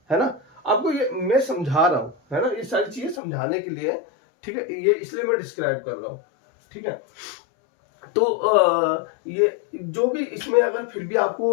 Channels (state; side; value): drops out; right; at 3.2 s